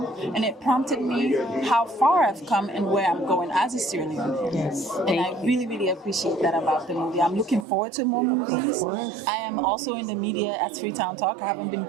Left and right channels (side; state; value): left; drops out; at 7.7 s